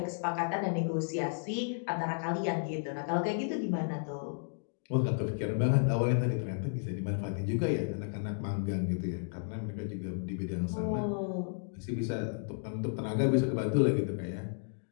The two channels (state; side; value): silent; right; digital silence